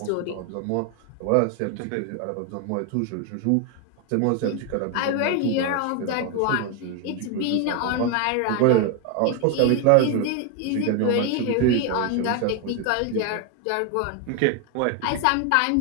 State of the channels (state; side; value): different; both; correlation 0.01